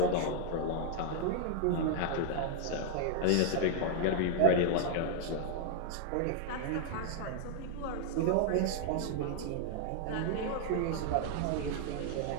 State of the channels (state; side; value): different; both; correlation 0.00